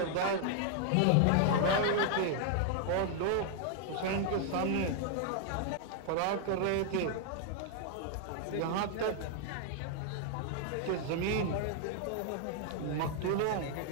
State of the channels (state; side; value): different; both; correlation 0.00